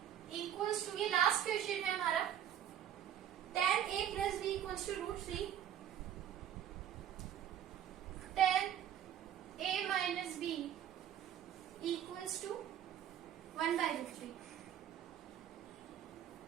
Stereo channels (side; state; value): left; quieter; 10.2 dB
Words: equals to, ये लास्ट क्वेश्चन है हमारा, 10a plus b equals to √3, 10a minus b equals to 1/√3।